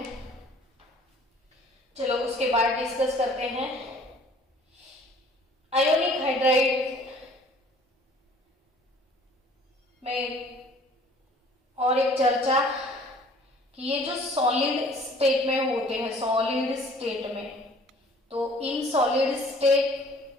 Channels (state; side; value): normal; both; correlation 0.53